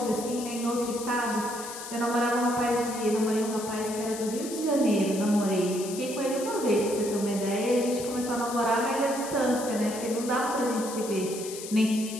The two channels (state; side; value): noise; left; hiss, 10 dB below the sound